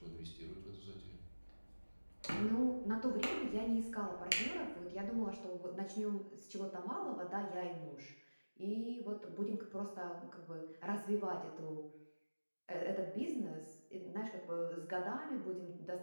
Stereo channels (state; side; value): inverted; both; correlation -1.00